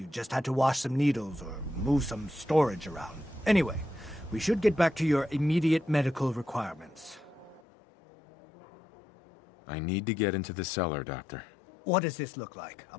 just had to wash some needles or move some storage around. Anyway, we should get back to your immediate medical requirements. I need to get into the cellar, Doctor. What does this look like? A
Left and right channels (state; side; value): drops out; right; at 7.6 s